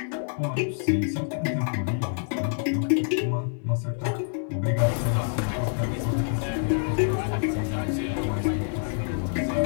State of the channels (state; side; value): silent; right; digital silence